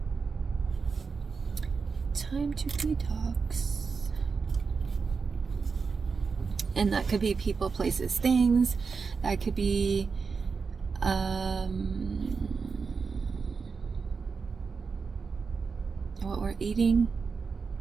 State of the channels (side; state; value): left; quieter; 5.1 dB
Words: Time to detox. And that could be people, places, things. That could be what we're eating.